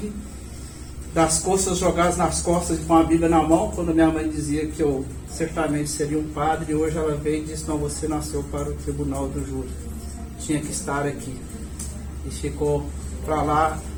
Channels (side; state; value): both; identical; correlation 1.00